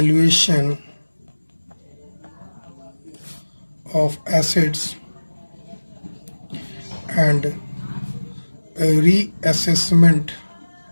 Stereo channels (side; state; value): both; inverted; correlation -1.00